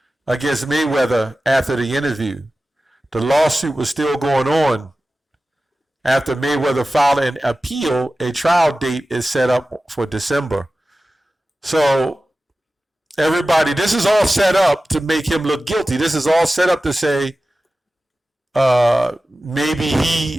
against Mayweather after the interview. The lawsuit was still going on. After Mayweather filed an appeal, a trial date is set up for December. So, everybody, this is all set up to make him look guilty. This is all set up to say maybe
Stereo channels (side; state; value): both; normal; correlation 0.95